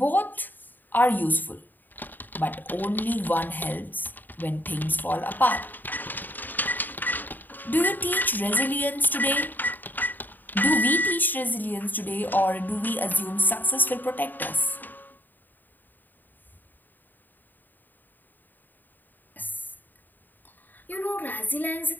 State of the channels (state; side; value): late; right; 0.089 ms